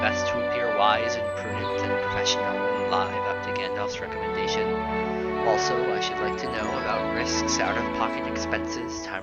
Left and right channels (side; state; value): both; identical; correlation 1.00